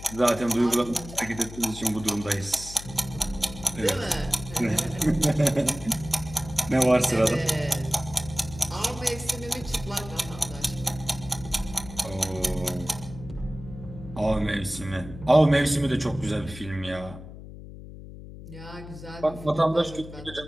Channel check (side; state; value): left; noise; hum, 14 dB below the sound